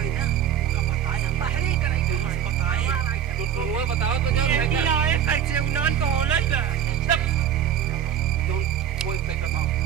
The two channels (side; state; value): left; quieter; 9.7 dB